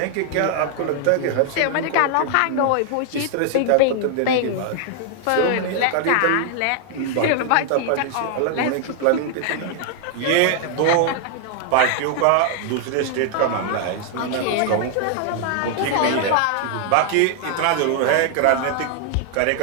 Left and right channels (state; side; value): different; both; correlation 0.00